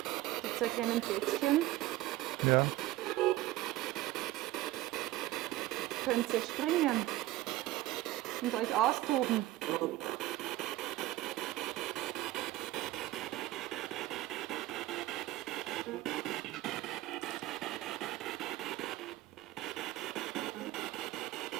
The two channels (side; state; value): left; quieter; 16.5 dB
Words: Mit so kleinen Bettchen Ja. könnt ihr springen und euch austoben.